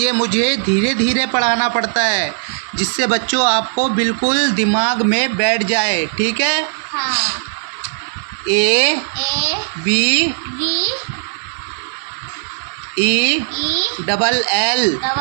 मुझे धीरे धीरे पढ़ाना पड़ता है, जिससे बच्चों आपको बिल्कुल दिमाग में बैठ जाए, ठीक है। ABELL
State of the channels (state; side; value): silent; left; digital silence